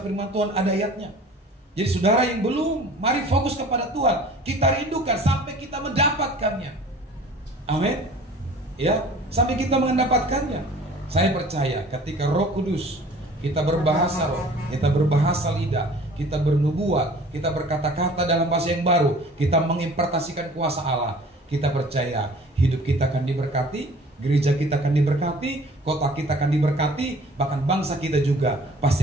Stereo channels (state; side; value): normal; both; correlation 0.48